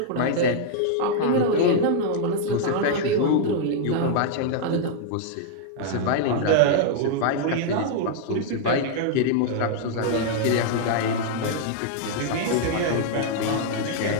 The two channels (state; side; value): different; both; correlation -0.01